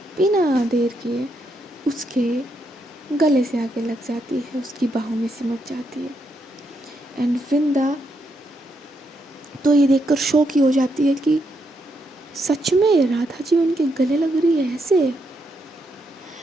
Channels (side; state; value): both; normal; correlation 0.79